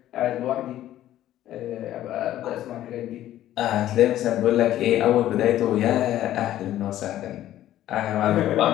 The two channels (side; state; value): right; quieter; 13.1 dB